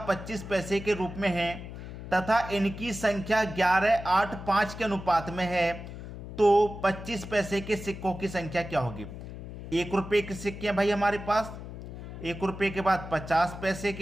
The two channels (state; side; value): noise; left; hum, 11 dB below the sound